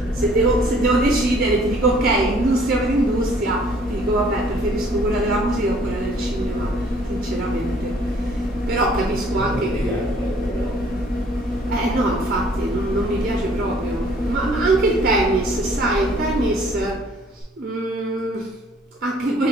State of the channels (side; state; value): both; normal; correlation 0.58